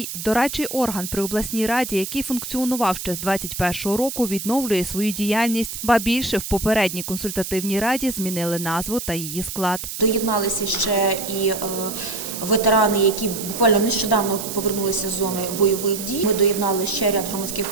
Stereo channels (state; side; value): noise; right; hiss, 7 dB below the sound